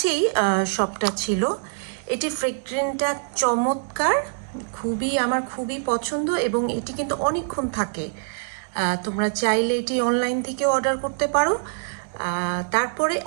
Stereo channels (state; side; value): silent; left; digital silence